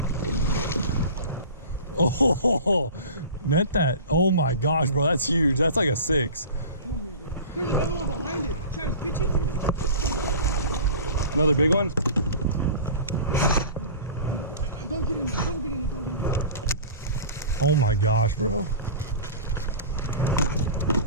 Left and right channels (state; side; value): inverted; both; correlation -0.37